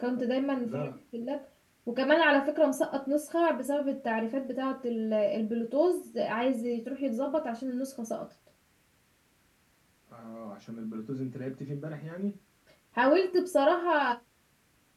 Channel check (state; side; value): identical; both; correlation 1.00